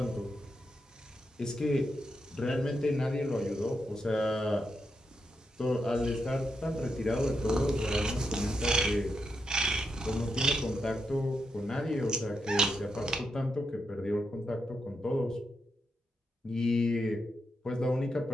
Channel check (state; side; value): normal; both; correlation 0.84